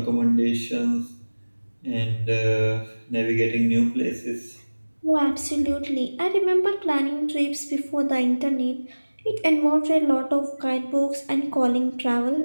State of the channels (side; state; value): both; inverted; correlation -1.00